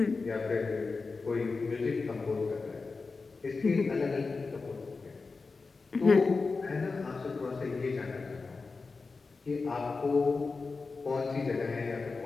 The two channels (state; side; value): quieter; right; 4.2 dB